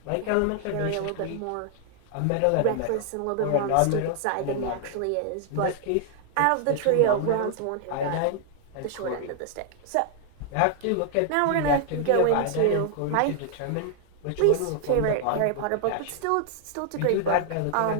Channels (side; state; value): both; different; correlation 0.00